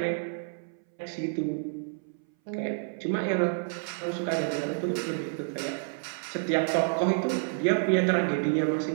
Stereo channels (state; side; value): silent; left; 58 dB below the other